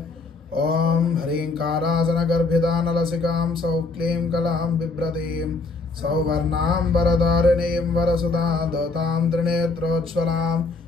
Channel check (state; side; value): quieter; right; 3.8 dB